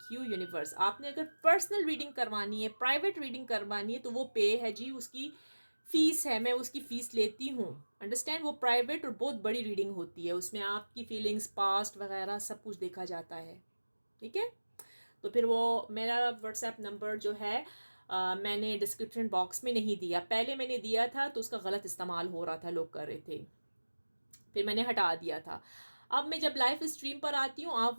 you universe. आपने अगर पर्सनल रीडिंग करवानी है, प्राइवेट रीडिंग करवानी है, तो वो पे है जी, उसकी फीस है, मैं उसकी फ़ीस लेती हूँ, अंडरस्टैंड। वो प्राइवेट और बहुत बड़ी रीडिंग होती है, उसमें आपकी फीलिंग्स, पास्ट वगैरह सब कुछ देखा जाता है। ठीक है। तो फिर वो मेरा व्हाट्सएप नंबर जो है मैंने डिस्क्रिप्शन बॉक्स में नहीं दिया। पहले मैंने दिया था तो उसका गलत इस्तेमाल हो रहा था, लोग कर रहे थे, फिर मैंने हटा दिया था। अब मैं जब लाइव स्ट्रीम पर आती हूँ, आप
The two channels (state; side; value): inverted; both; correlation -1.00